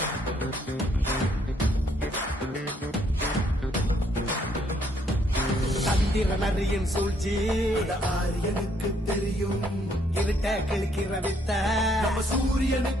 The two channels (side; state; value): both; normal; correlation 0.69